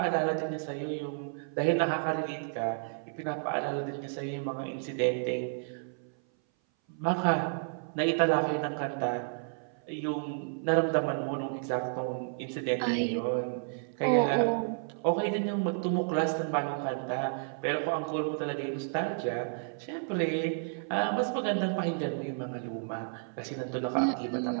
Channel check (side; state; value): left; silent; 57 dB below the other